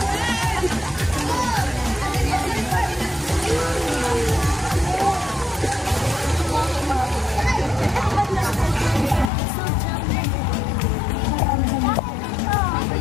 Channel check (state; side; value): drops out; right; at 9.3 s